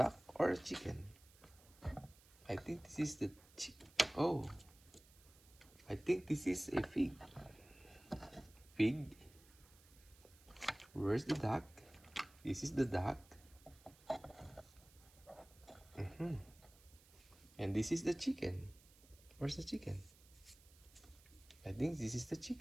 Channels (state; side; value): noise; right; hiss, 25 dB below the sound